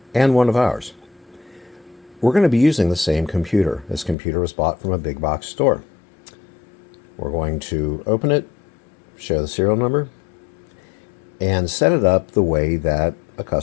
and one of ours. We're going to be using the same computer. This computer was bought from a big box store. We're going to open it, show the serial number, and set it up the way that a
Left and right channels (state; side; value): drops out; right; at 4.2 s